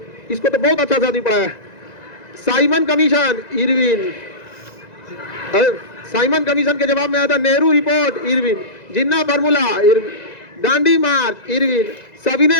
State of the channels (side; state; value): right; late; 1.9 ms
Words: इसको तो बहुत अच्छा से आदमी पढ़ा है। Simon commission, Irwin. Simon commission के जवाब में आया था नेहरू रिपोर्ट, इरविन। जिन्ना फार्मूला, इरविन। दांडी मार्च, इरविन।